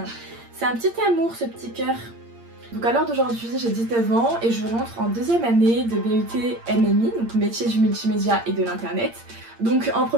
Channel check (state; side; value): late; left; 8.7 ms